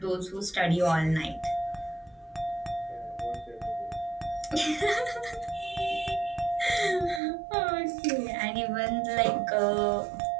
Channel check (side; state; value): left; drops out; at 7.2 s